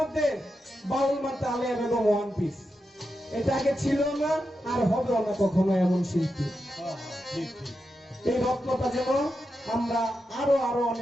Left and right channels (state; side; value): normal; both; correlation 0.88